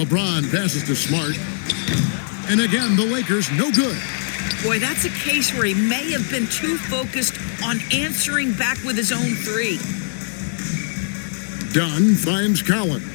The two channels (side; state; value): right; silent; digital silence